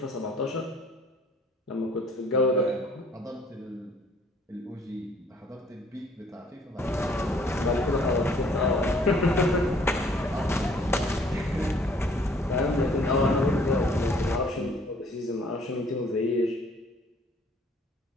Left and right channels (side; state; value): both; normal; correlation 0.59